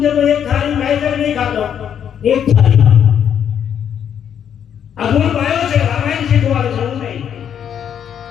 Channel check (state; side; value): quieter; right; 8.8 dB